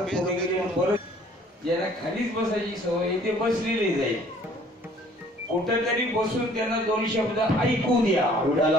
पुढे गेले परत ज्यांना खालीच बसायची सवय ते बसलेले जाईल. कुठेतरी बसून त्यांना दोन शब्द ऐकू द्या.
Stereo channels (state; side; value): normal; both; correlation 0.56